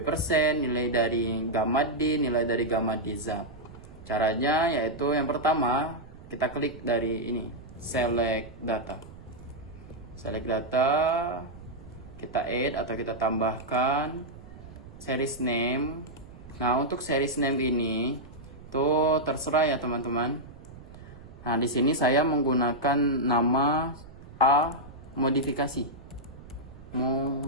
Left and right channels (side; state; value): right; noise; rumble, 18 dB below the sound